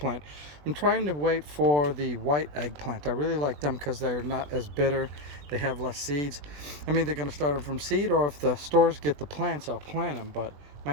I'm trying to wait for the white eggplant. I really like them because they're not as bitter. They have less seeds. I'm either going to start them from seed, or if the stores get the plants, I'll plant them, but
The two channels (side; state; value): left; late; 20 ms